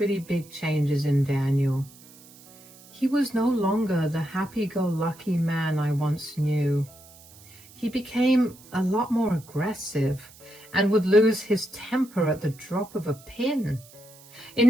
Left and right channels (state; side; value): noise; right; hiss, 23 dB below the sound